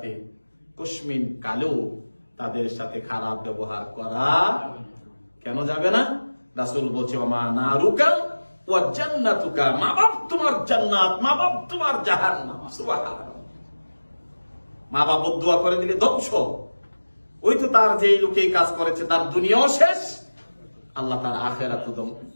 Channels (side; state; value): both; inverted; correlation -1.00